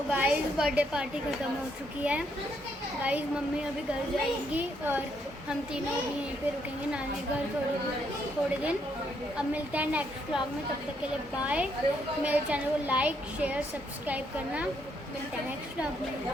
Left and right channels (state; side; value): normal; both; correlation 0.74